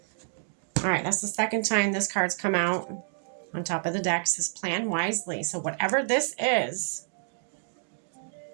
All right, that's the second time this card's come out on top of the deck. It says plan wisely. So whatever this is,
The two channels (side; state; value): left; silent; 59 dB below the other